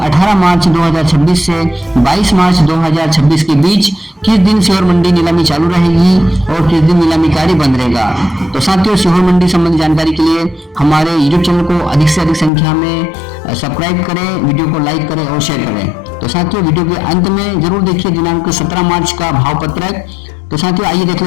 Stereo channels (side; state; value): right; drops out; at 12.5 s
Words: मार्च 2026 से 22 मार्च 2026 के बीच किस दिन सीहोर मंडी नीलामी चालू रहेगी और किस दिन नीलामी कार्य बंद रहेगा। तो साथियों सीहोर मंडी संबंधी जानकारी के लिए हमारे YouTube चैनल को अधिक से अधिक संख्या में सब्सक्राइब करें, वीडियो को लाइक करें और शेयर करें। तो साथियों वीडियो के अंत में जरूर देखिए दिनांक 17 मार्च का भाव पत्रक। तो साथियों आइए देख